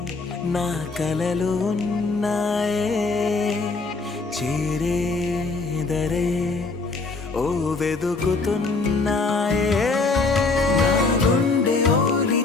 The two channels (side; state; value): right; quieter; 3.9 dB